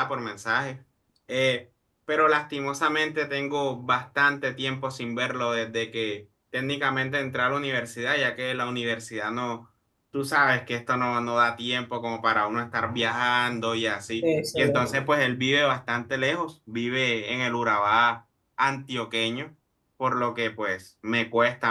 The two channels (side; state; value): both; identical; correlation 1.00